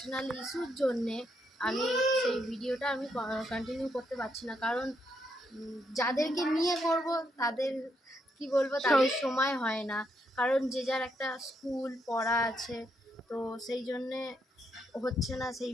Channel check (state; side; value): normal; both; correlation 0.77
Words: ইস্যুর জন্যে আমি সেই ভিডিওটা কন্টিনিউ করতে পারছি না, কারণ যাদেরকে নিয়ে করব তাদের কি বলবো, তাদের সময় হয় না, কারণ যে যার একটা স্কুল পড়া আছে, তো সেই জন্যে হচ্ছে না সেই